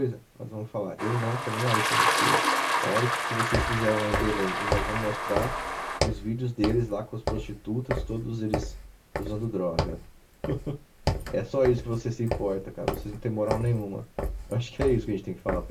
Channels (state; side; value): identical; both; correlation 1.00